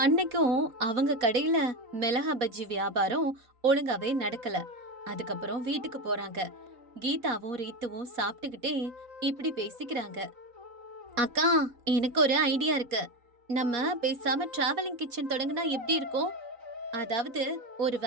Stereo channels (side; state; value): left; late; 4.2 ms